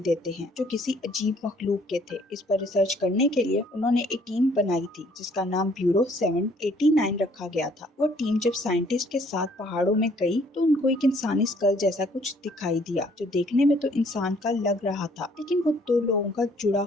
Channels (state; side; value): normal; both; correlation 0.62